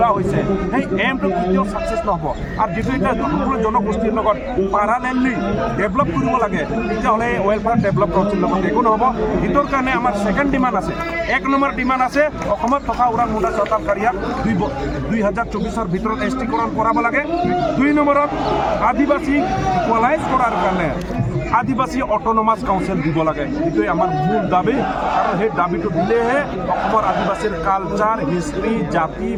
হৈছে সেই এমটো কেতিয়াও ছাকচেছ নহ'ব আৰু যিটো এতিয়া সকলো জনগোষ্ঠীৰ লগত পাৰালেলি ডেভেলপ কৰিব লাগে তেতিয়াহ'লে এই ৱেলফেয়াৰ ডেভেলপ কাউন্সিলৰ লগত একো নহ'ব সেইটোৰ কাৰণে আমাৰ ছেকেণ্ড ডিমাণ্ড আছে 1 নম্বৰ ডিমাণ্ড আছে অসমত থকা ওৰাং মুণ্ডা চৰকাৰীয়াক 2024ৰ ভিতৰত এছটিকৰণ কৰাব লাগে 2 নম্বৰত আদিবাসী ইকুৱেলাইজ কৰাৰ কাৰণে আদিবাসী অট'নমাছ কাউন্সিল দিব লাগে এইটোৱে আমাৰ মূল দাবী আৰু সেই দাবীটো দিলেহে অসমৰ আদিবাসীৰ কালচাৰ হিষ্ট্ৰী জাতি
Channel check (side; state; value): both; identical; correlation 1.00